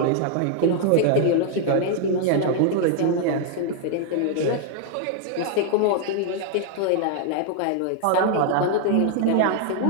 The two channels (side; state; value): both; different; correlation 0.00